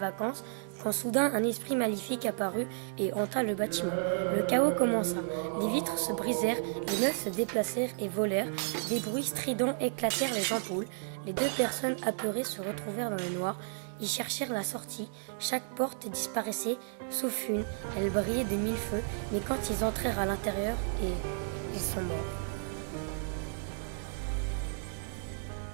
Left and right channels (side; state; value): left; silent; digital silence